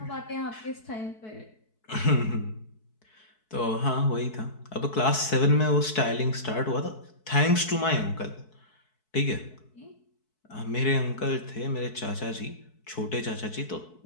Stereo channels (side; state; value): right; late; 4.6 ms